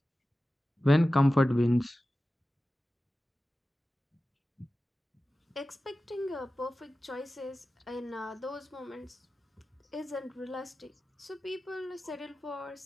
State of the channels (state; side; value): normal; both; correlation 0.95